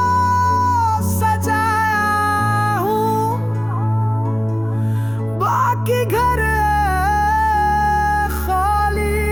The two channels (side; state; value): left; noise; rumble, 23 dB below the sound